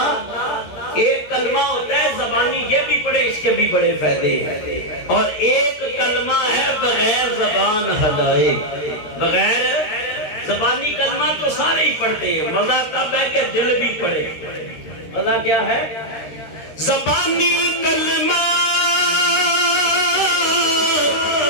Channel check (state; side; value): late; right; 13 ms